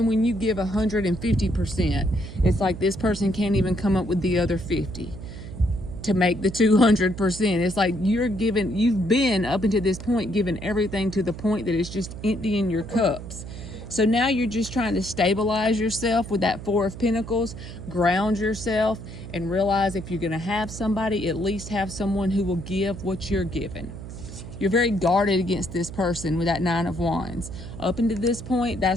when you give 150%, it's like this person can't even come up with the other 50 to make the 200%. It's like you've been up until this point giving everything to the point that it's just emptying your cups. So now you're just trying to stabilize yourself with that Four of Pentacles, ground yourself, and realize if you're going to have somebody, at least have someone who will give what you're giving. You're very guarded against this person with that Nine of Wands. Up until this point,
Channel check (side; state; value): right; noise; hum, 11 dB below the sound